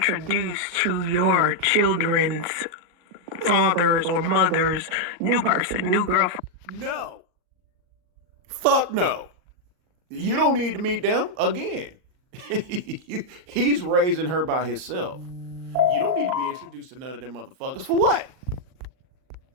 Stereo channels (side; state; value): left; late; 39 ms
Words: to your children's fathers or mothers, new person, new girlfriend. No. Fuck no. You don't need to meet them again. He's raising her by himself. You don't need to be introduced to none of them motherfuckers. For what?